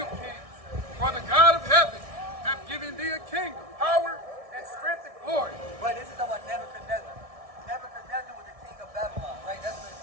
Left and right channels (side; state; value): left; late; 1.6 ms